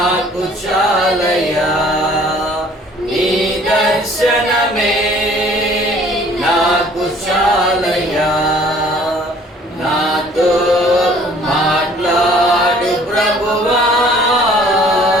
చాలయా, నీ దర్శనమే నాకు చాలయా. నాతో మాట్లాడు ప్రభువా,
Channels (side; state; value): both; normal; correlation 0.55